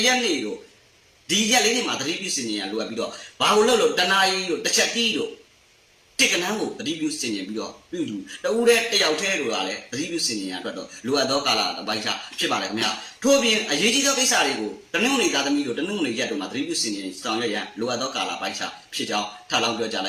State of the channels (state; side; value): identical; both; correlation 1.00